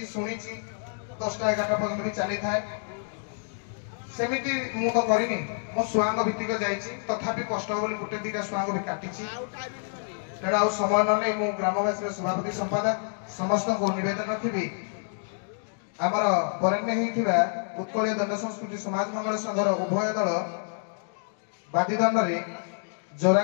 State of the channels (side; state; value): right; silent; digital silence